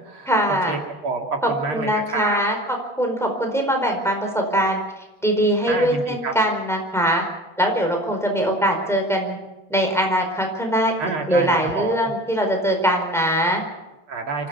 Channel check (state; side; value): normal; both; correlation 0.40